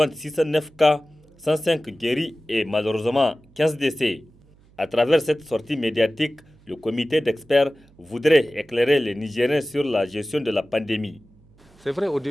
609 cas, 105 guéris et malheureusement 15 décès. À travers cette sortie médiatique, le comité d'experts voudrait éclairer les Nigériens sur la gestion de la pandémie. C'est vrai, au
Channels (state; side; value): noise; right; hum, 29 dB below the sound